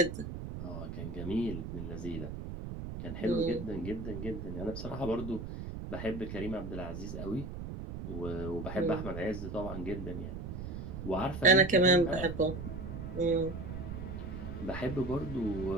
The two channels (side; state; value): right; noise; rumble, 7 dB below the sound